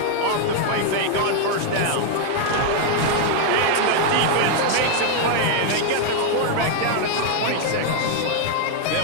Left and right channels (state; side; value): different; both; correlation 0.00